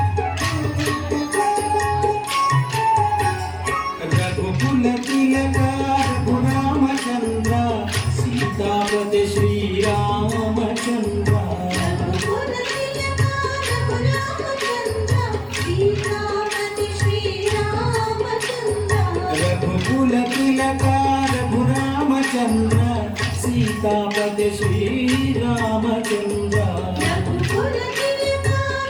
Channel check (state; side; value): identical; both; correlation 1.00